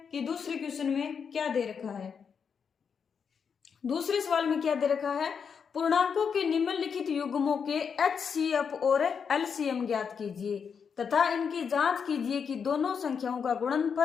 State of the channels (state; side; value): quieter; right; 6.5 dB